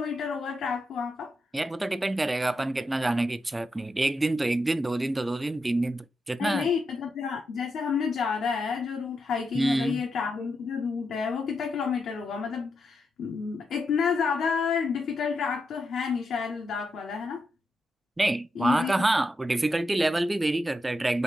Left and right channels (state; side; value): normal; both; correlation 0.85